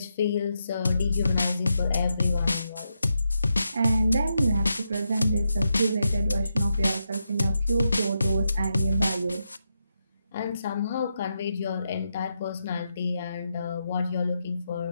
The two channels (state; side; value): inverted; both; correlation -0.84